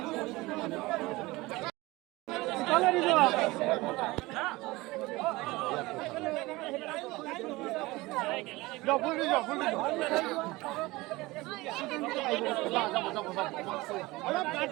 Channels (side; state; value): left; quieter; 21.0 dB